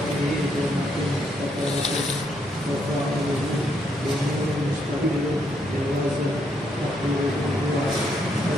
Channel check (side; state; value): both; normal; correlation 0.75